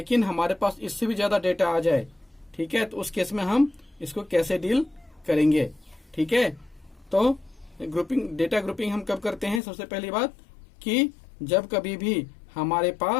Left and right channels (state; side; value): drops out; right; at 9.6 s